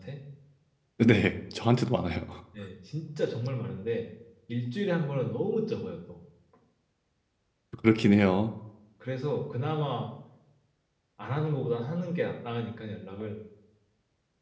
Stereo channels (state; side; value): identical; both; correlation 1.00